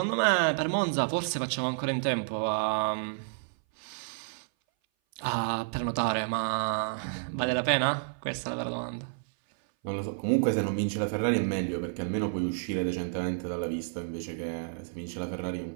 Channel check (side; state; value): left; silent; 58 dB below the other